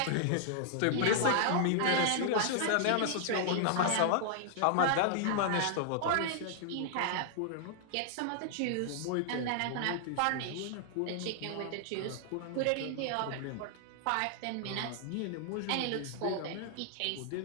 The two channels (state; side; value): different; both; correlation -0.01